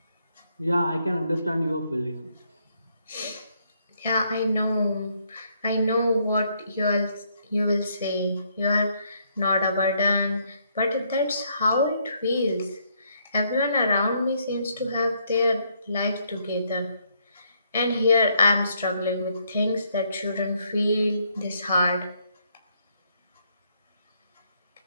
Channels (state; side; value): inverted; both; correlation -0.72